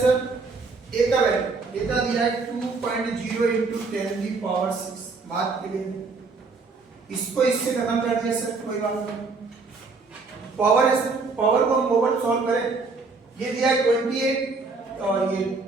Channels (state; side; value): quieter; left; 4.1 dB